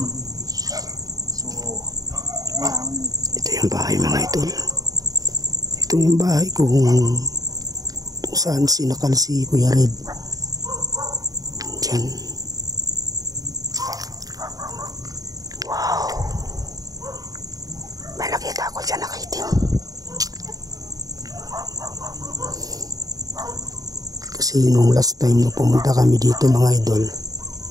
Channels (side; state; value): left; late; 0.18 ms